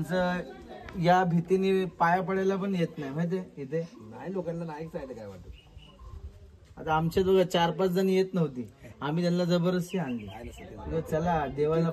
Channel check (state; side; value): identical; both; correlation 1.00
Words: या भीतीने पाया पडायला पण येत नाही माहितीये इथे. नाही लोकांना नाही जायला काय वाटत. आता आमच्या दोघं 4-5 जण येत नव्हती, आम्ही त्यांना जबरदस्ती आणली. चला देवाला